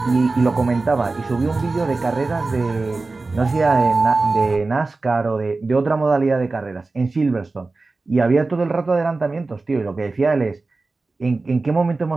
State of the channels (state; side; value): quieter; left; 3.6 dB